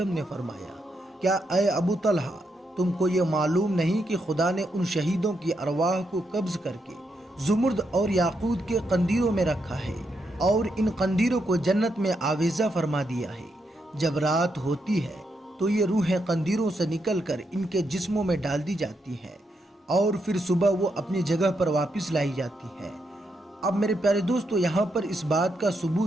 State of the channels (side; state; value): both; normal; correlation 0.81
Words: نے فرمایا، کیا اے ابو طلحہ، تم کو یہ معلوم نہیں کہ خدا نے ان شہیدوں کی ارواح کو قبض کر کے زمرد اور یاقوت کے قندیلوں میں رکھا ہے اور ان قندیلوں کو جنت میں آویزہ فرما دیا ہے۔ جب رات ہوتی ہے تو یہ روحیں قندیلوں سے نکل کر ان کے جسموں میں ڈال دی جاتی ہیں اور پھر صبح وہ اپنی جگہ پر واپس لائی جاتی ہے۔ اب میرے پیارے دوستو، یہاں پر اس بات کا